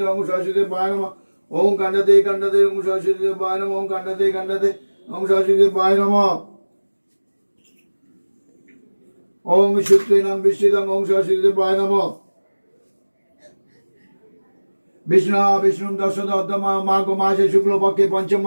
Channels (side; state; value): both; inverted; correlation -1.00